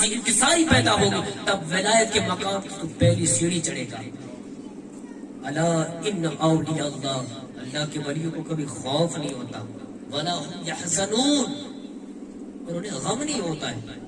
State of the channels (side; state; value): both; identical; correlation 1.00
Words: انکساری پیدا ہوگی، تب ولایت کے مقام کی تو پہلی سیڑھی چڑھے گا. الا ان اولیاء اللہ، اللہ کے ولیوں کو کبھی خوف نہیں ہوتا، ولا هم يحزنون، اور انہیں غم نہیں ہوتا ہے.